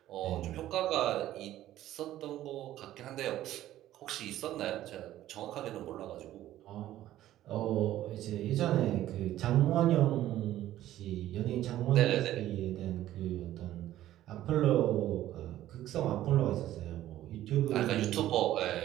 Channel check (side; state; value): left; quieter; 13.6 dB